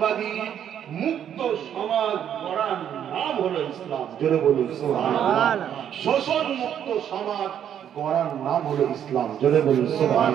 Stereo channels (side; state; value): left; quieter; 9.5 dB